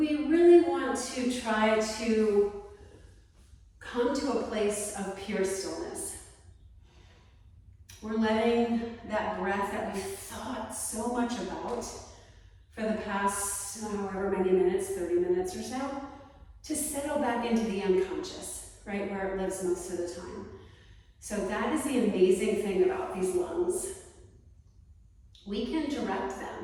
really want to try to come to a place of pure stillness. We're letting that breath that we've thought so much about for the past however many minutes, 30 minutes or so, to settle back into the unconscious, right, where it lives most of the time. So that is the amazing thing about these lungs. We can direct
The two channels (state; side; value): identical; both; correlation 1.00